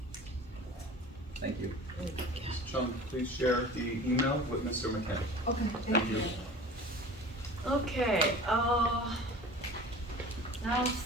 Thank you. Ms. Chung, please share the email with Mr. McCann. Okay, Thank thank you. you. Okay, now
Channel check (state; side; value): normal; both; correlation 0.40